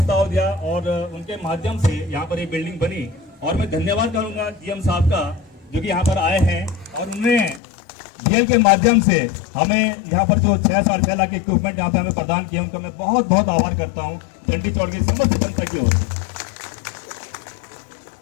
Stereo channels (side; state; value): right; drops out; at 7.6 s